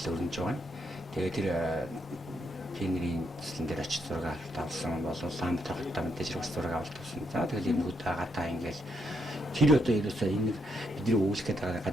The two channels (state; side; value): normal; both; correlation 0.78